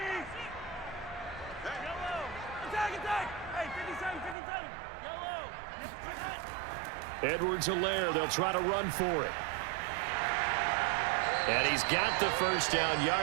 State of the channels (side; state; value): left; drops out; at 4.4 s